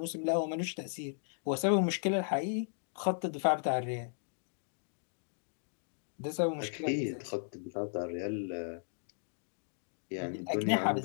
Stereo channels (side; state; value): right; silent; digital silence